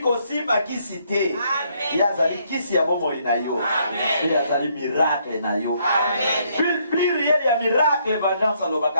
kosimba kisi te ye azali kisi ya bomo bomoi na yo. Et azali miracle na yo. Plus réel ya miracle vengeance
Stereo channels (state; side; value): inverted; both; correlation -0.70